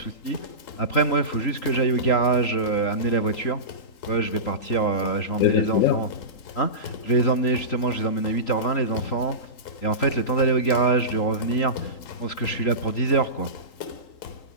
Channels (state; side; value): late; right; 3.8 ms